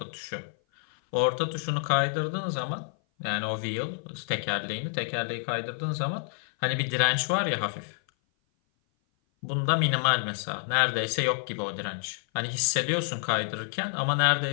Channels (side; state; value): right; silent; 56 dB below the other